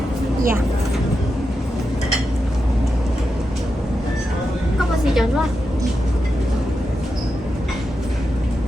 Dạ. Có bao gì chọn luôn?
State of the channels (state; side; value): normal; both; correlation 0.88